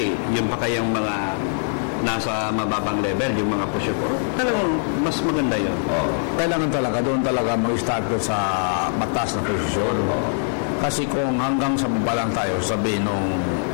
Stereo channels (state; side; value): silent; right; 64 dB below the other